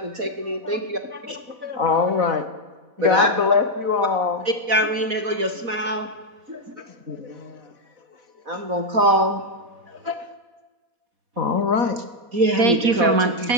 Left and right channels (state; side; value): late; left; 4.1 ms